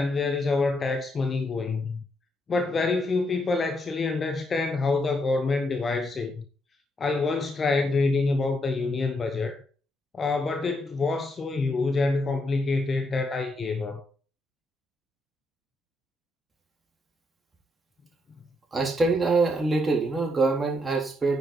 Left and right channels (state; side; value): normal; both; correlation 0.78